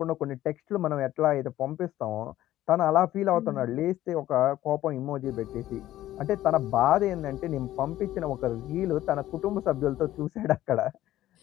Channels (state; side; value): quieter; right; 14.2 dB